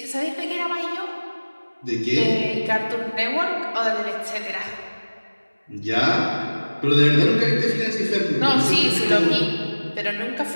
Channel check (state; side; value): inverted; both; correlation -1.00